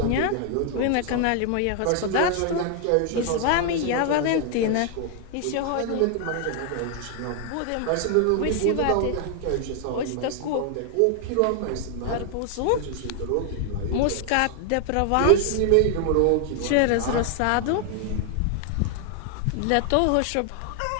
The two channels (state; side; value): different; both; correlation 0.00